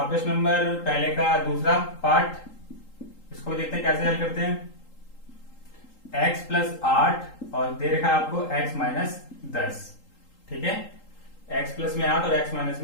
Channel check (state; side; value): late; right; 3.8 ms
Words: प्रश्न नंबर पहले का दूसरा पार्ट, इसको देखते हैं कैसे हल करते हैं। x प्लस 8 और दे रखा है आपको x माइनस 10, ठीक है। x प्लस में 8 और x माइनस